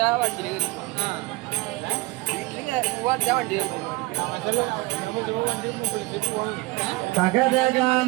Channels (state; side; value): quieter; left; 22.2 dB